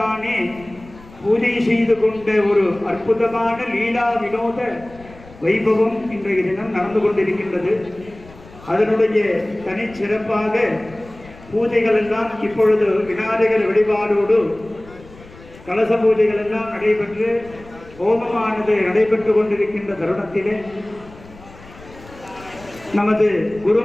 பூஜை செய்து கொண்ட ஒரு அற்புதமான லீலா வினோத வைபவம் இன்றைய தினம் நடந்து கொண்டிருக்கின்றது. அதனுடைய தனிச்சிறப்பாக பூஜைகள் எல்லாம் இப்பொழுது விநாயகர் வழிபாடோடு கலச பூஜைகள் எல்லாம் நடைபெற்று ஹோமமானது நடைபெற்று கொண்டிருக்கின்ற தருணத்திலே நமது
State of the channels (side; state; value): left; noise; rumble, 21 dB below the sound